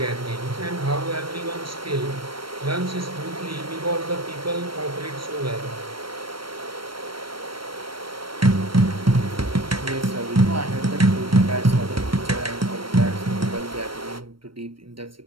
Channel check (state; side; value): late; left; 0.74 ms